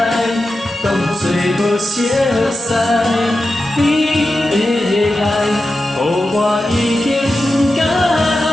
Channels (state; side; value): normal; both; correlation 0.91